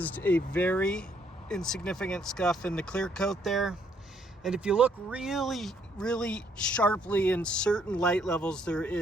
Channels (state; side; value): normal; both; correlation 0.69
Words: a very insignificant scuff in the clear coat there. And if you look really sharply in certain light levels, there